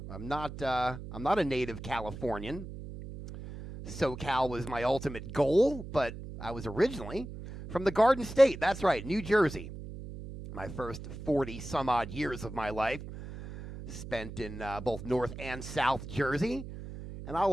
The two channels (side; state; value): right; noise; hum, 11 dB below the sound